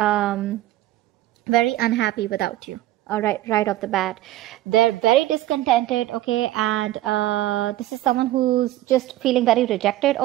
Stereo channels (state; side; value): quieter; left; 15.2 dB